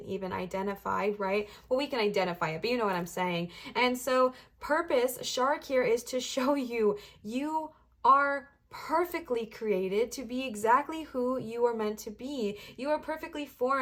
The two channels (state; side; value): identical; both; correlation 1.00